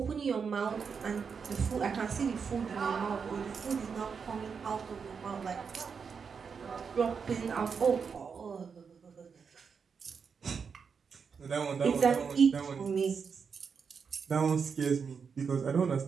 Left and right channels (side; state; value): left; quieter; 6.0 dB